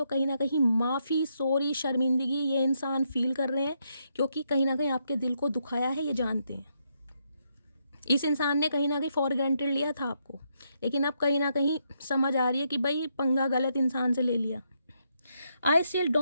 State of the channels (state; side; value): inverted; both; correlation -0.78